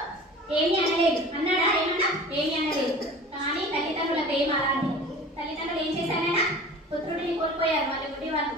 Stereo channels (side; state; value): both; normal; correlation 0.40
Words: ఏమి అనలేదు. అన్నాడా? ఏమన్నా? ఏమి అనలేదు. కానీ తల్లిదండ్రుల ప్రేమ అలాంటి. తల్లిదండ్రులు ఏం చేశారైనా పుత్రుడిని కోల్పోయారు వాళ్ళ గుడి వాళ్ళు.